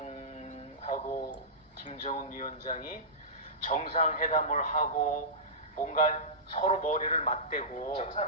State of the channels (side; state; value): both; normal; correlation -0.18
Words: 김정은 위원장이 정상회담을 하고 뭔가 서로 머리를 맞대고